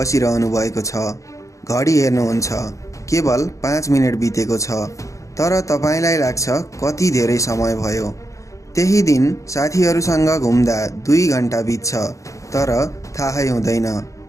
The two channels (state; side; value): late; right; 0.15 ms